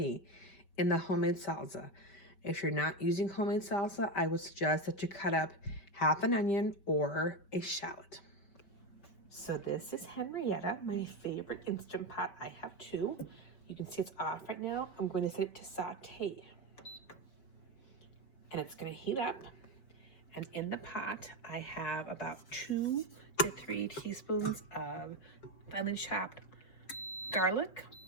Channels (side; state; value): right; late; 4.9 ms